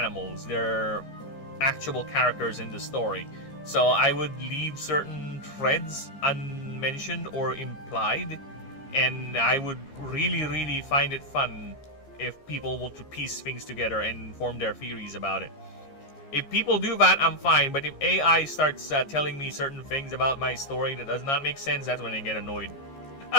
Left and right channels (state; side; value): late; right; 15 ms